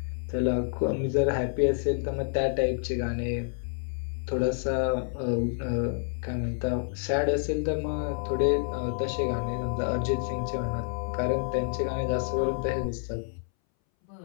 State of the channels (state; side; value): silent; right; 59 dB below the other